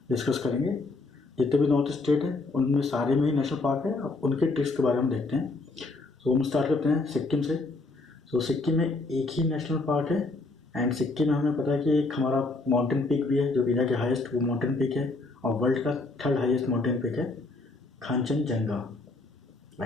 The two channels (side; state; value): right; quieter; 3.4 dB